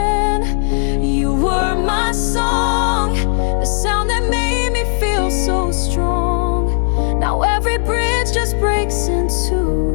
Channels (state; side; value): silent; right; digital silence